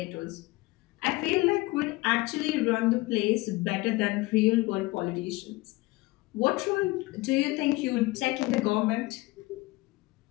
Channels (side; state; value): right; quieter; 21.2 dB